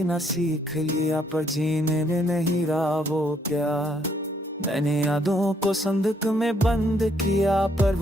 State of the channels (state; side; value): normal; both; correlation 0.70